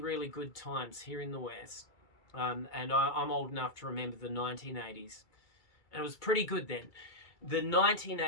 good times here in the West, and I'm old enough to remember the 1980s, and it was pretty good then. The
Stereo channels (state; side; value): late; right; 2.3 ms